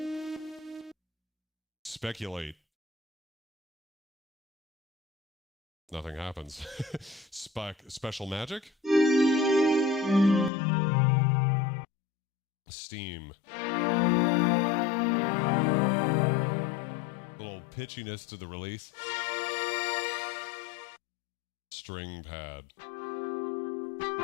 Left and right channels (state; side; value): drops out; right; at 10.5 s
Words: Speculate. Nothing happens. Special magic. Steam. Little pitchiness to the release. String pad.